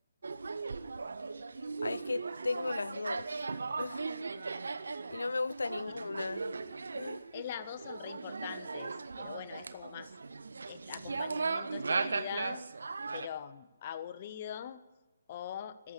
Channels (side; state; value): both; inverted; correlation -0.86